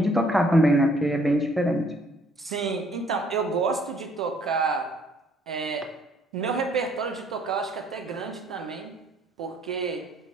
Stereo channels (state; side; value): normal; both; correlation 0.62